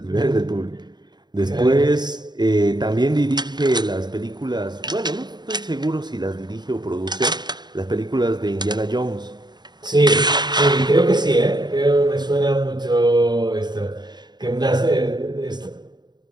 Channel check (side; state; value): left; late; 0.21 ms